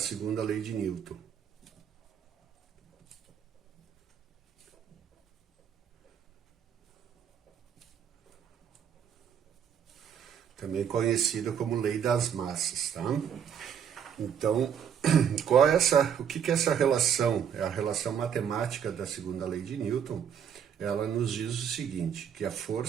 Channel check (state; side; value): quieter; left; 8.2 dB